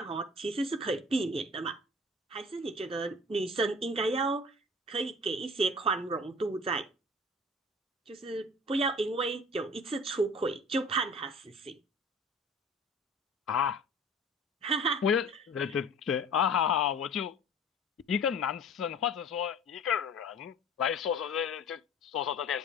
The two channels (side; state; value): both; normal; correlation 0.44